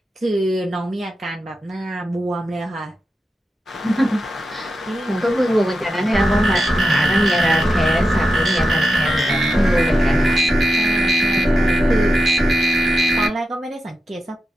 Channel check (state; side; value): normal; both; correlation 0.89